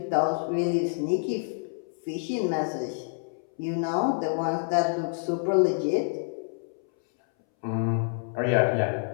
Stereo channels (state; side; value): silent; right; 60 dB below the other